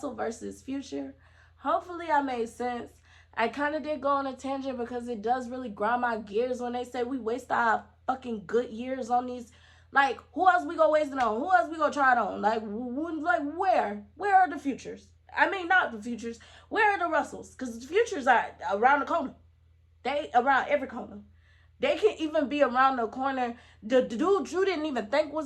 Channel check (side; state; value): both; identical; correlation 1.00